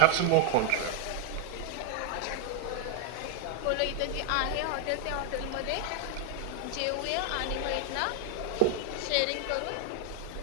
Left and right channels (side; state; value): both; different; correlation 0.00